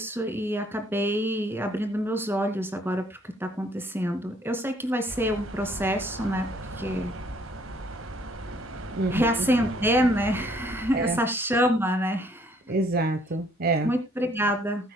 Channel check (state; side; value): normal; both; correlation 0.63